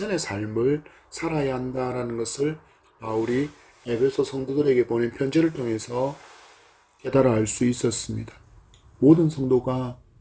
삶을 살아야 한다라는 것을 바울이 에베소 성도들에게 보낸 편지를 통해서 깨달아 알 수 있었습니다. 모든 성도가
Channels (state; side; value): identical; both; correlation 1.00